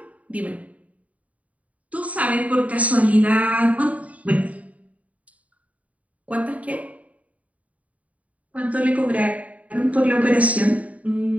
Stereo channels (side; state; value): left; late; 0.069 ms